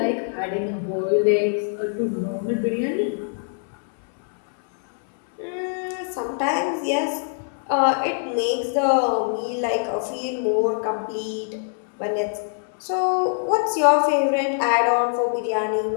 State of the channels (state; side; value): silent; right; 63 dB below the other